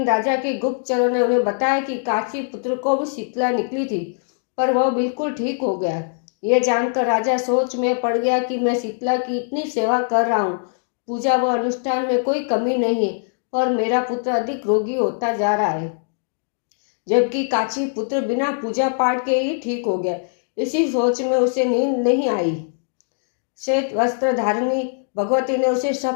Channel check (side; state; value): right; silent; digital silence